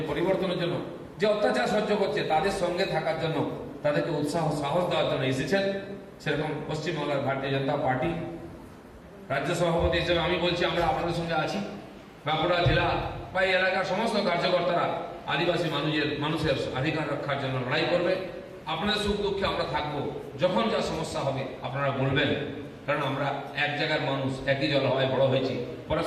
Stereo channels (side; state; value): both; identical; correlation 1.00